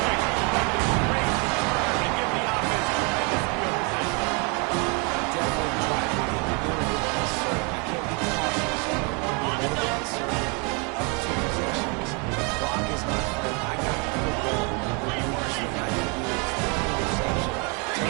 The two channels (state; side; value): quieter; left; 33.1 dB